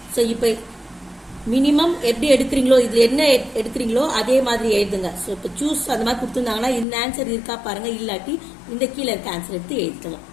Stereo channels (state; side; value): drops out; right; at 6.9 s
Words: ஸோ இப்போ மினிமம் எப்படி எடுக்கிறீங்களோ, இதுல என்ன எடுக்கிறீங்களோ அதே மாதிரி எழுதுங்க. ஸோ இப்போ சூஸ் அந்த மாதிரி கொடுத்துருந்தாங்கன்னா இந்த ஆன்சர் இருக்கா பாருங்க, இல்லாட்டி இந்த கீழே இருக்க ஆன்சர் எடுத்து எழுதிக்கலாம்.